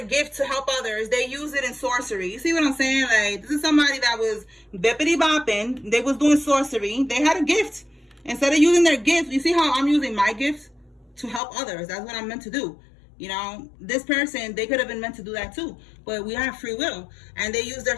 gift to help others, they use it in sorcery. You see what I'm saying? Like, this is somebody that was bippity bopping. They was doing sorcery. They had a gift. Instead of using their gift, you see how I'm using my gift to help others. That's what I'm meant to do. You know, this person, they could have been meant to do that too. But we have free will. And they use their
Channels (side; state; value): right; drops out; at 11.4 s